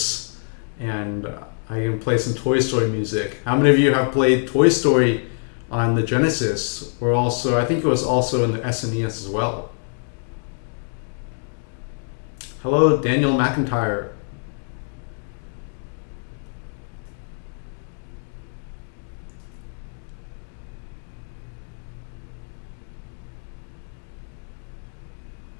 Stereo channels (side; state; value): right; silent; digital silence